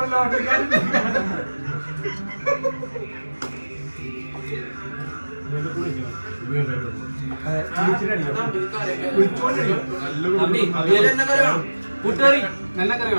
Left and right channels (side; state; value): both; inverted; correlation -1.00